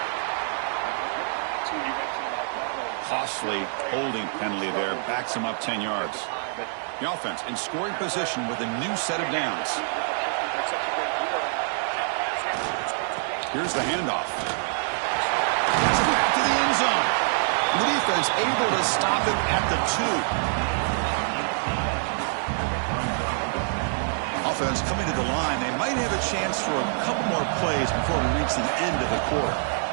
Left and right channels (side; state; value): left; silent; digital silence